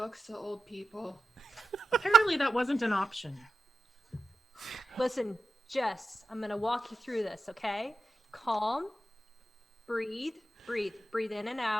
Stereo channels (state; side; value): normal; both; correlation 0.90